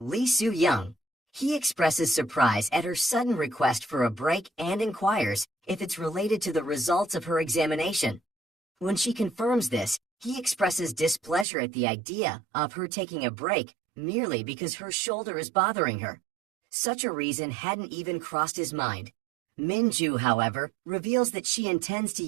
Soo-young. He expresses surprise at her sudden request for a break and inquires if it's related to the results of her examination. When she confirms this, he expresses displeasure at the idea of her taking a break merely because her shoulder is bothering her. Such a reason hadn't even crossed his mind. Minju, however, reveals that she intends to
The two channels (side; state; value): left; drops out; at 11.5 s